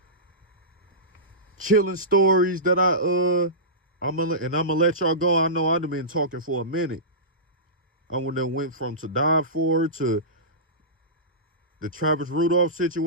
chilling stories that I'm gonna let y'all go. I know I've been talking for a minute. I went from To Die For to the Travis Rudolph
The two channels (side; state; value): both; normal; correlation -0.20